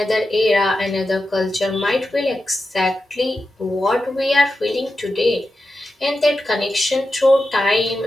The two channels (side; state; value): both; normal; correlation 0.90